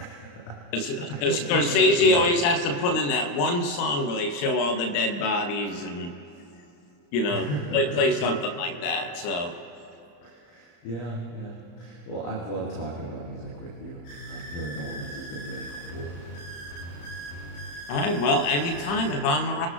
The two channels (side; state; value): right; late; 35 ms